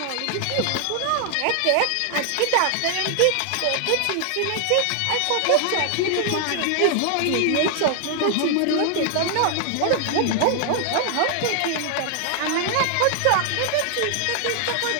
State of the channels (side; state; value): both; different; correlation 0.00